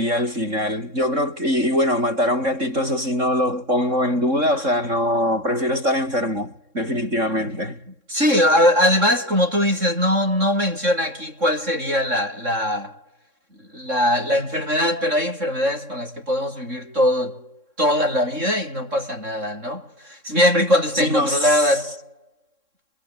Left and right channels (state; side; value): late; left; 3.7 ms